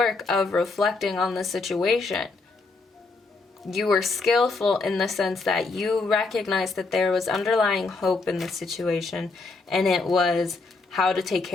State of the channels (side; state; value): right; quieter; 3.8 dB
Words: of reflecting on the situation. You were skillful in the sense that you recognized that there was underlying hope in the situation, and it was how to take